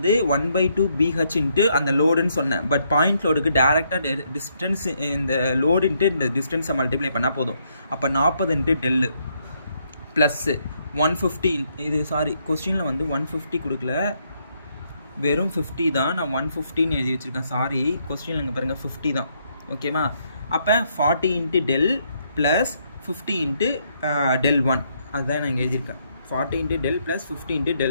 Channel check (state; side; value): inverted; both; correlation -0.74